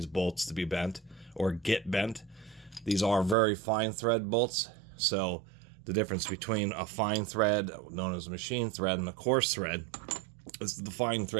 bolts to be bent or get bent. These are very fine thread bolts, so the difference between a fine thread, known as a machine thread, and a coarse thread is the fine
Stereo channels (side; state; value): left; drops out; at 3.4 s